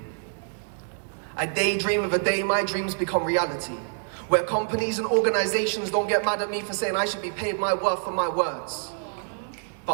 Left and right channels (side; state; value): left; silent; digital silence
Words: I daydream of a day my dreams become reality, where companies and organizations don't get mad at me for saying I should be paid my worth for my words.